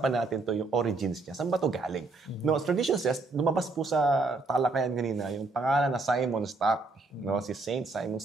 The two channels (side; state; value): left; quieter; 3.5 dB